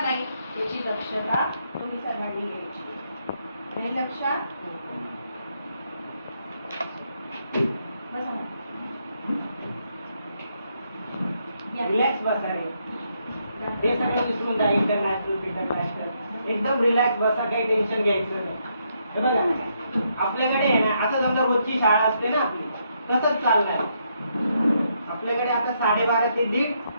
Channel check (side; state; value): both; inverted; correlation -0.76